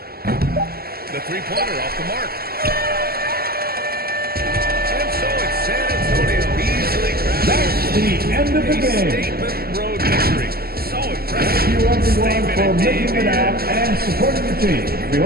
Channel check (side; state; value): left; late; 0.44 ms